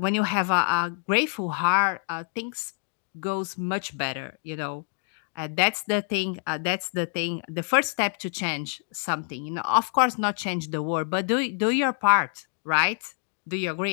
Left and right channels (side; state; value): right; silent; 60 dB below the other